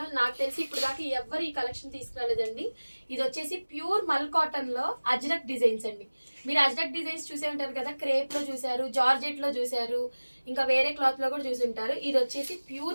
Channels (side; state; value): both; inverted; correlation -1.00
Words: నాకు తెలిసి ఇప్పుడు దాకా ఎవరు ఈ కలెక్షన్ తీసుకురాలేదండి. ఇది వచ్చేసి ప్యూర్ మల్ కాటన్ లో అజ్రక్ డిజైన్స్ అండి. మీరు అజ్రక్ డిజైన్స్ చూసే ఉంటారు కదా, క్రేప్ లో చూసారు, జార్జెట్ లో చూసారు, ఇంకా వేరే క్లాత్ లో కూడా చూసి ఉంటారు. ఇది వచ్చేసి